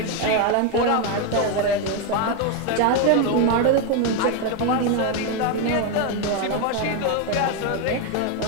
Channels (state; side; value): different; both; correlation 0.02